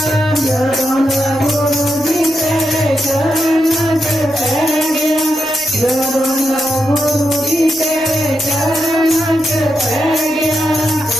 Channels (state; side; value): noise; right; rumble, 26 dB below the sound